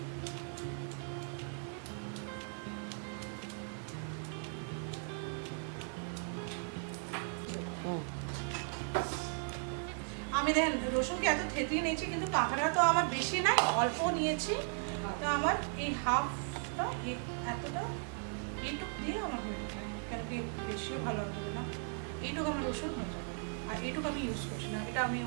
আমি দেখেন রসুনকে এত থেতলিয়ে নিয়েছি, কিন্তু কাঁকড়া তো আমার বেশি নাই, অল্প নিয়েছি। তো আমার এই হাফটা এতটা এইটুকু দিয়ে আমার হয়ে যাবে, কেন কি বেশিও ভালো হবে না, এইটুকু আমার রসুন হয়ে যাবে। আর এইটুকু আমি ইউজ করছি না, এটা আমি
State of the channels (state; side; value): silent; left; 53 dB below the other